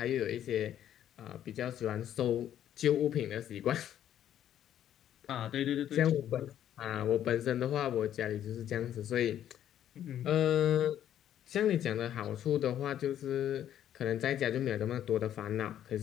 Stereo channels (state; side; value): quieter; right; 10.8 dB